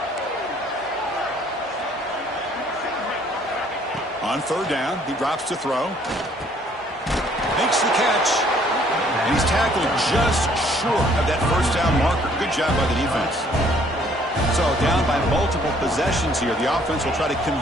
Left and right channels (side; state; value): both; normal; correlation 0.61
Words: On third down, he drops to throw. Makes the catch. And he's tackled just short of that first down marker. Good job by the defense. So down by multiple possessions here. The offense will try to